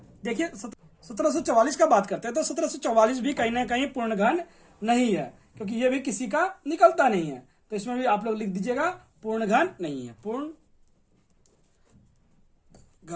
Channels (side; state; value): both; identical; correlation 1.00